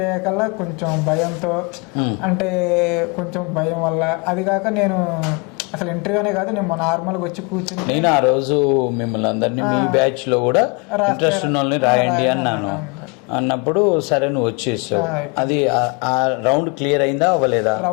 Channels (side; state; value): right; quieter; 31.1 dB